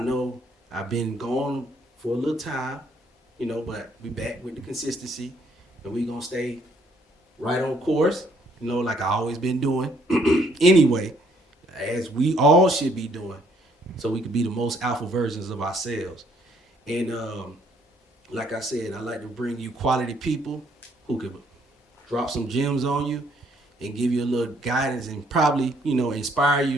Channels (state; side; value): normal; both; correlation 0.67